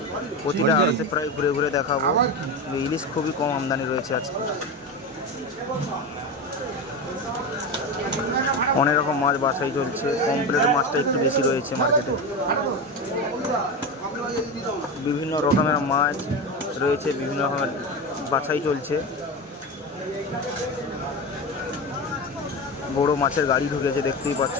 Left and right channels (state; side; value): normal; both; correlation 0.21